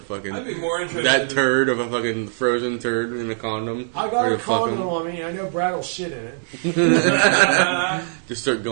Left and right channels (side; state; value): left; silent; digital silence